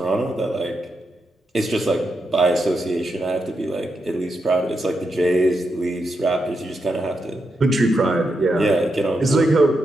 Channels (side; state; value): both; normal; correlation 0.84